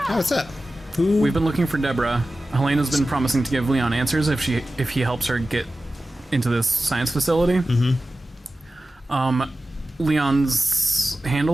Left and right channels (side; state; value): both; normal; correlation 0.95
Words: Oh, what's up? Who? We've been looking for Deborah. Helena's been promising to give Leon answers if he helps her get into this science facility. Mm-hmm. Leon's